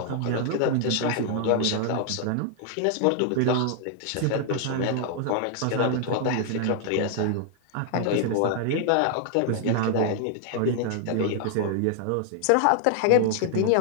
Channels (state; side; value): different; both; correlation 0.00